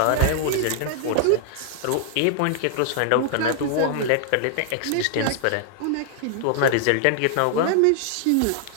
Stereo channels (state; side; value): different; both; correlation -0.01